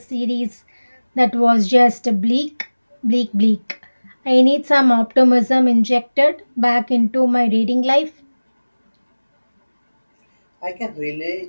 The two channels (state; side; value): inverted; both; correlation -1.00